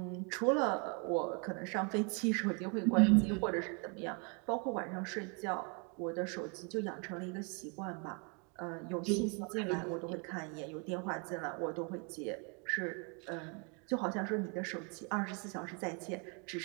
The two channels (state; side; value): quieter; left; 34.3 dB